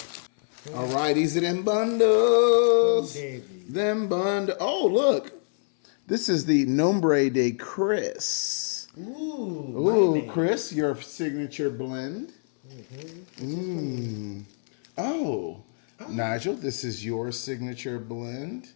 All right, these are them bundles. Oh, look. This is the Nombre de Chris. Ooh, Chris, your signature blend. Oh, Nigel, this is your signature blend.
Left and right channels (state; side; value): silent; right; 61 dB below the other